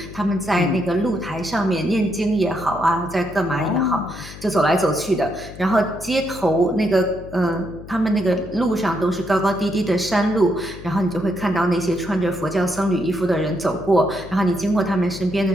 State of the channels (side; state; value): left; noise; hum, 15 dB below the sound